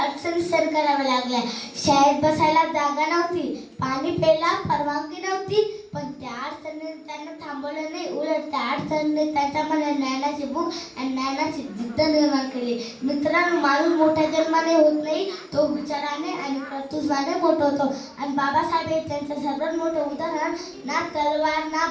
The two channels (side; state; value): both; identical; correlation 1.00